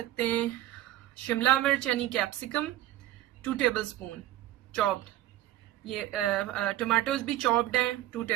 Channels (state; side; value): quieter; left; 14.5 dB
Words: हैं। शिमला मिर्च यानी कैप्सिकम 2 टेबलस्पून चॉप्ड। ये टमाटोज भी चॉप्ड हैं 2